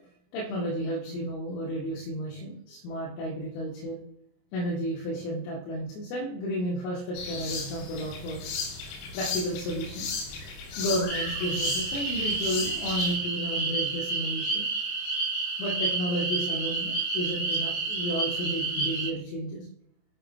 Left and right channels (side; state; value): right; late; 28 ms